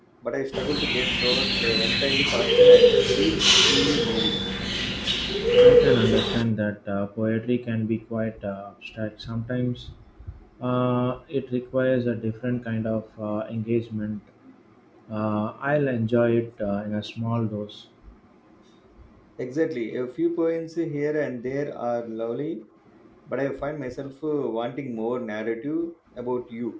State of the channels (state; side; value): identical; both; correlation 1.00